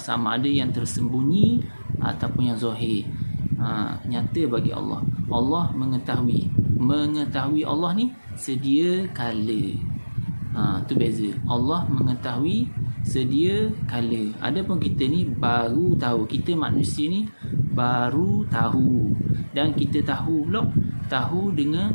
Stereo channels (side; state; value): both; inverted; correlation -1.00